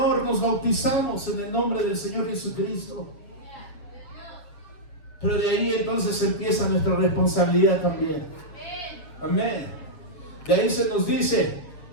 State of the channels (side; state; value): right; late; 7.3 ms